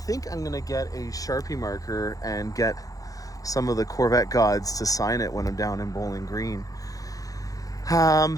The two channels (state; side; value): late; right; 0.17 ms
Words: I'm going to get a Sharpie marker and get some of the Corvette gods to sign it when I'm down in Bowling Green.